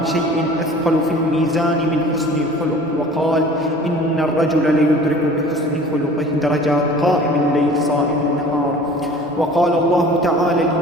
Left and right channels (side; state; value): both; normal; correlation 0.45